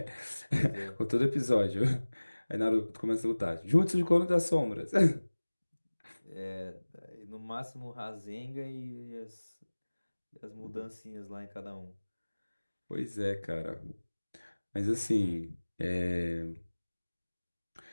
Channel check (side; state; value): both; inverted; correlation -1.00